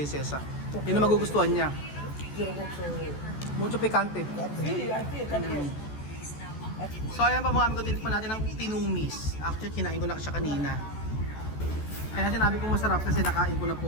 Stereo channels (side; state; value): right; late; 14 ms